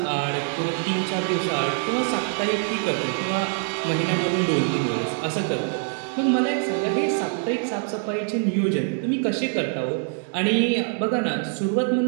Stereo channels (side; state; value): left; silent; 55 dB below the other